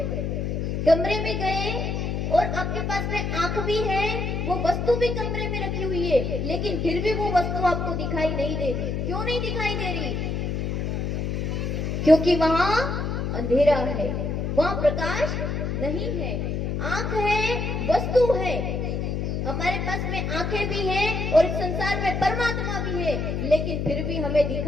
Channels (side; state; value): left; noise; hum, 1 dB below the sound